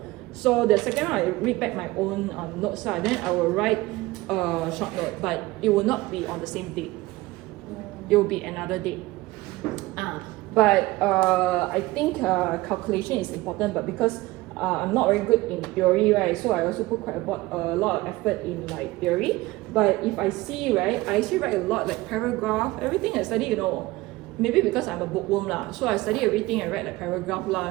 So the second one, I read back my own notes, then I will write a short note, but it will not be on the same date. It will be another date. But I think calculation is important, but because I'm not very good in theory, right? So I also put quite a lot of effort in like theory. But if I see, right, I actually write a lot, like paragraph, everything I study, maybe because I'm a bookworm lah, so I study everything. I write like paragraph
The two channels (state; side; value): quieter; left; 19.7 dB